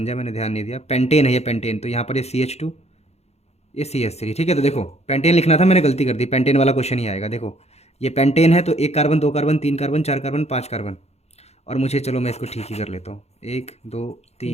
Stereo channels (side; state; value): right; late; 0.31 ms